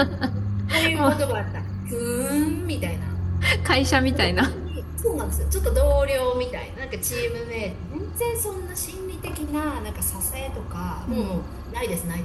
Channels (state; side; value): identical; both; correlation 1.00